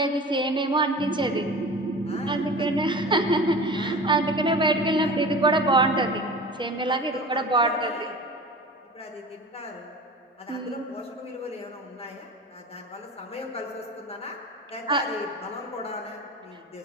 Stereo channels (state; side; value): normal; both; correlation 0.37